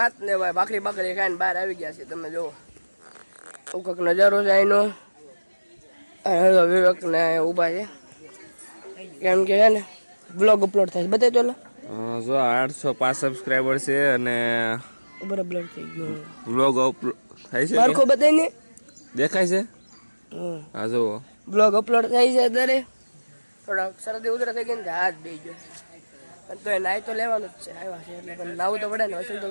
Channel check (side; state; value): both; inverted; correlation -1.00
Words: ને ભાઈ ભાખરી બાખરી ખાઈને બહાર આવી ગયા છે તમે જુઓ કંઈક નજારો છે અહીંનો વિવેક ને ઊભા છે કેમ કે છે ને બ્લોગ અપલોડ થાય બતાવી તો જો 805 સબસ્ક્રાઇબર છે અને બરાબર થઈ ગયો બ્લોગ અપલોડ થાય છે મારખો બતાવીને દેખાય છે હા જો બ્લોગ અપલોડ થાય છે અત્યારે થોડાક શરદી ઉધરા થઈ ગઈ ને હાથ દઈ ગયો તો એ નાઈ તો લેવાનું જ છે આવ્યા છે એટલે પણ નાવું તો પડે ને વસૂલ તો